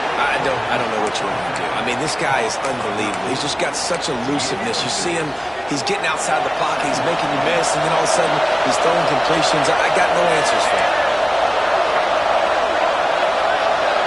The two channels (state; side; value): identical; both; correlation 1.00